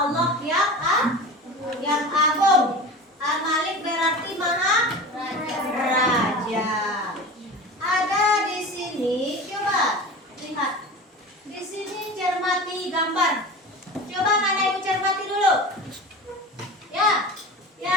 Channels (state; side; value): normal; both; correlation 0.32